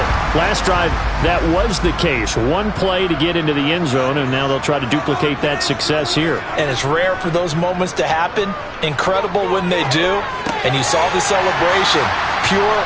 last drive, that was the case. One play to get into the end zone, and now they'll try to duplicate that success here. And it's rare for those moments to happen. Incredible when they do. And you saw the celebration. Pure,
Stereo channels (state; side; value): identical; both; correlation 1.00